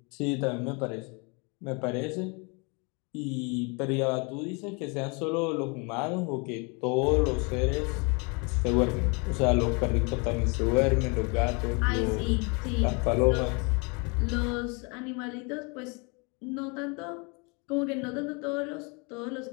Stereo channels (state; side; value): quieter; right; 31.8 dB